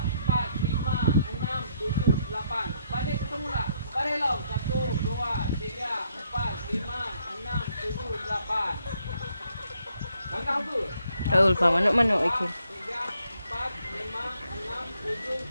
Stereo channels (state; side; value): inverted; both; correlation -0.72